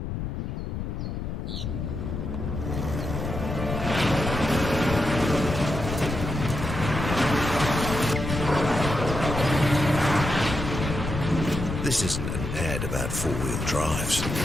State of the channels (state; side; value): noise; left; rumble, 4 dB below the sound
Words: This isn't an ad about four-wheel drives.